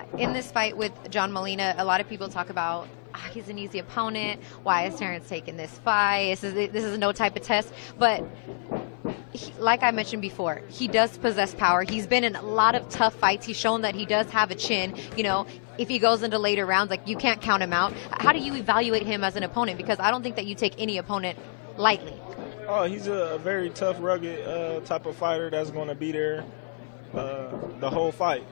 In this fight with John Molina, a lot of people talk about he's an easy opponent. Why is Terence taking this fight? This is no type of test. But like I mentioned before, he does possess power. He's been in a lot of tough fights. He's shown that he does have a chin. You know, if he goes into later rounds, like, you can't count him out. How do you evaluate him as an opponent? Because I don't think that you take any opponent lightly. Oh, he's a very tough, rugged type of fighter that's going to be there the whole fight.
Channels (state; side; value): silent; right; 56 dB below the other